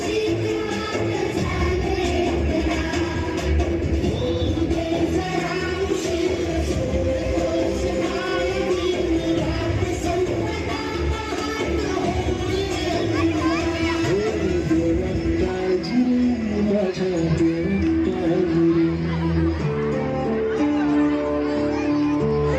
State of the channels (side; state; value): both; identical; correlation 1.00